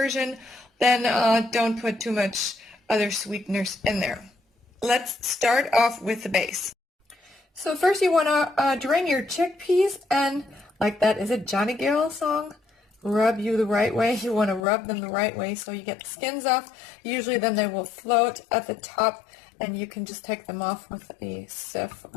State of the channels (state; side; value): drops out; right; at 14.6 s